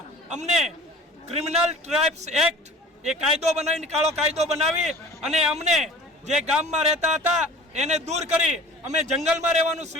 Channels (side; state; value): both; normal; correlation 0.44